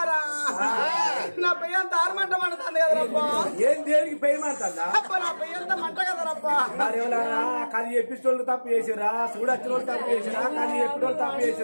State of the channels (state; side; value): inverted; both; correlation -1.00